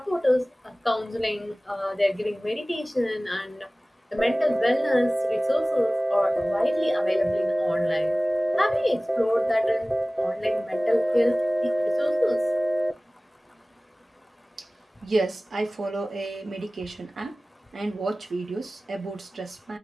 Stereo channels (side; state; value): both; normal; correlation 0.98